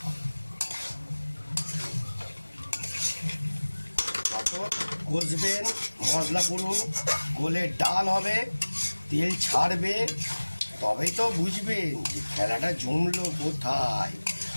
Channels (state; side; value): inverted; both; correlation -1.00